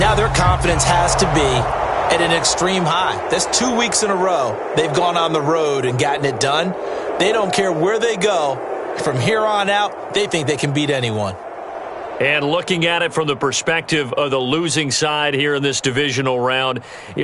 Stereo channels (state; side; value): identical; both; correlation 1.00